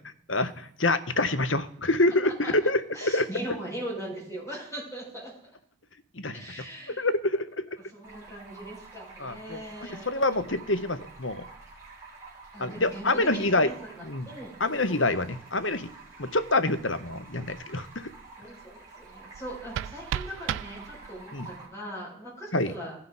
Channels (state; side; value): normal; both; correlation -0.09